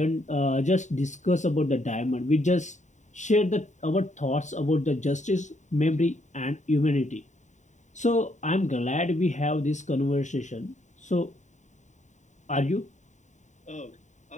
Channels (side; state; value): right; late; 0.34 ms